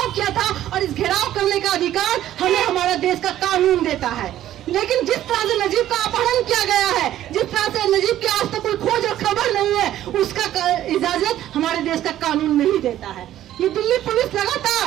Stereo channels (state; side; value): quieter; left; 12.6 dB